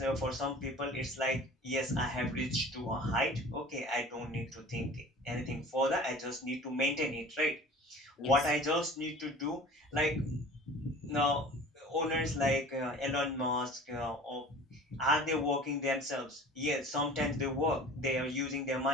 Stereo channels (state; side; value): normal; both; correlation 0.42